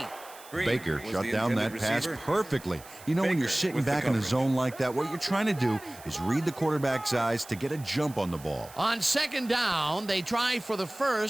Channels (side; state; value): right; noise; hiss, 20 dB below the sound